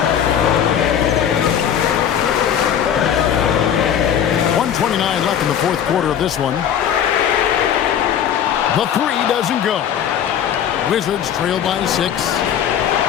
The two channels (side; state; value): right; quieter; 9.1 dB